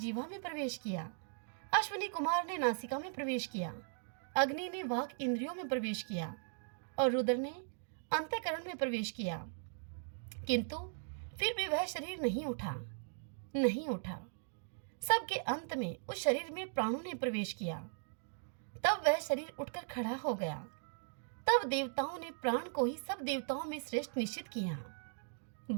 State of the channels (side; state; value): left; silent; digital silence